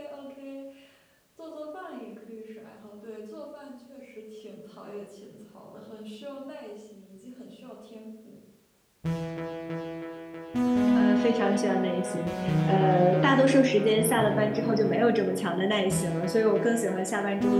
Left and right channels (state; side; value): identical; both; correlation 1.00